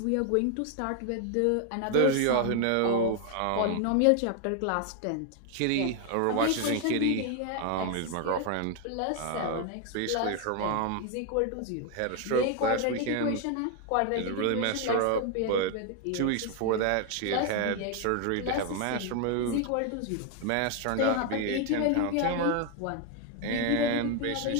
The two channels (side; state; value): both; different; correlation 0.01